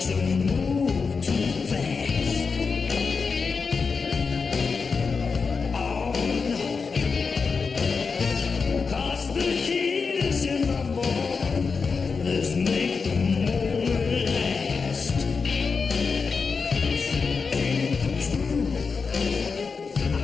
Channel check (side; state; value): right; quieter; 5.0 dB